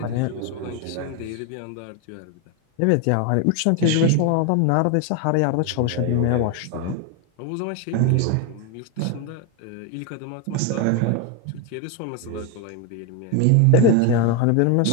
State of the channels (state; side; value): different; both; correlation 0.01